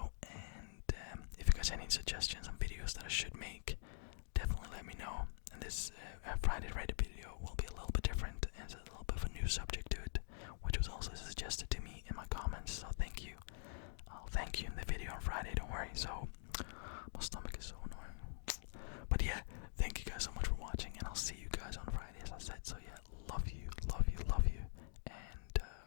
And if you guys have any suggestions on videos that I should make, definitely let me know. And this Friday Reddit video will be a little bit different, and it's a little bit of a new subject to it, which was also suggested to me in my comments. So thank you. I'll thank you in the video on Friday, don't worry. So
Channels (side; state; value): right; silent; digital silence